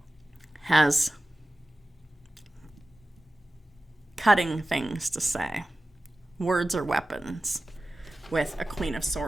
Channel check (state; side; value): normal; both; correlation 0.95